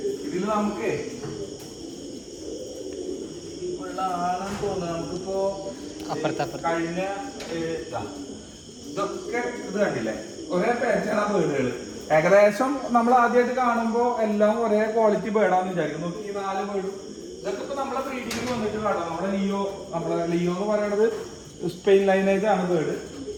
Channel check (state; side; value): identical; both; correlation 1.00